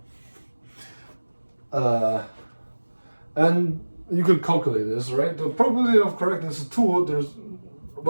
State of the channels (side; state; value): both; inverted; correlation -1.00